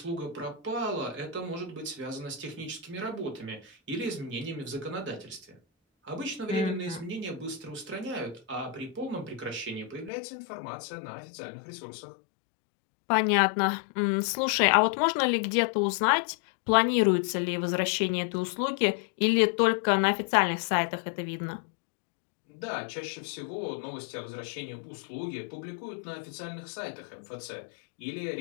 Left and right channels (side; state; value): right; drops out; at 10.1 s